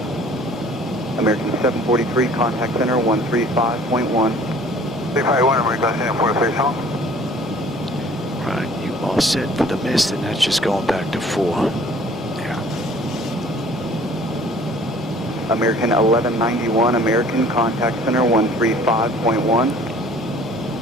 American 743, contact center 135.1. 351, American 743, home. Right, you all set for the mist, and that's just going back to 4. Yeah. American 1191, American, contact center 135.1.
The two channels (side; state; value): right; noise; rumble, 26 dB below the sound